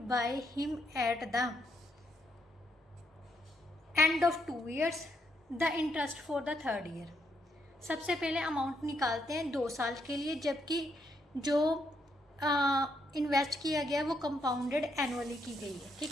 by him at the end of 2 years, the interest for the 3rd year. सबसे पहले amount निकालते हैं 2 साल के लिए, जबकि जो invest किया गया वो कंपाउंडेड एनुअली की गई है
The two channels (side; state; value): both; normal; correlation 0.76